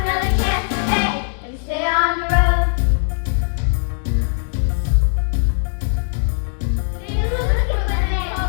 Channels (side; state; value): right; silent; digital silence